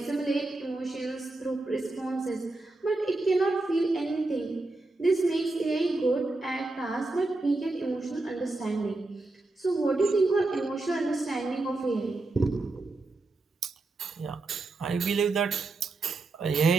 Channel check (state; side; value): quieter; left; 3.2 dB